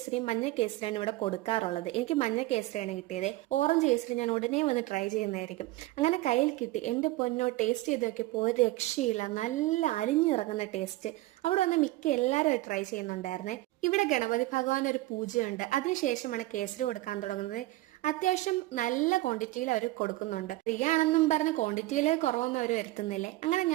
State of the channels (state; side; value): quieter; left; 18.4 dB